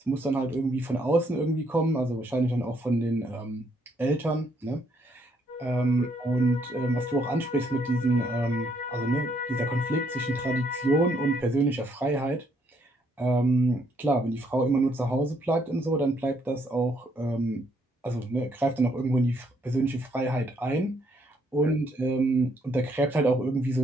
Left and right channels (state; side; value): normal; both; correlation 0.70